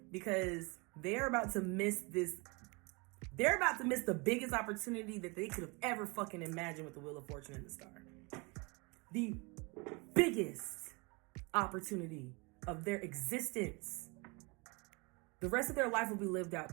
Because they're about to miss this. They're about to miss the biggest opportunity that they could have ever fucking imagined with the Wheel of Fortune and the Star. The biggest opportunity of their existence. The rest of their life will be lived out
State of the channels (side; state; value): left; quieter; 28.8 dB